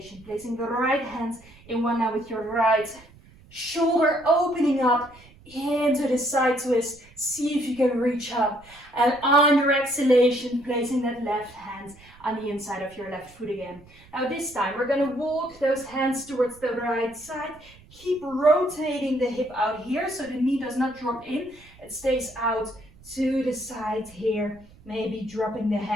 placing the right hand in one line with your right shoulder, opening up into the side twist. See if you can reach up. And on your exhalation, placing that left hand on the inside of your left foot again. Now this time, we're going to walk those hands towards the right side. Keep rotating the hip out here so the knee does not drop in. It stays out to the side here. Maybe dropping the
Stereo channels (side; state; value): right; noise; rumble, 25 dB below the sound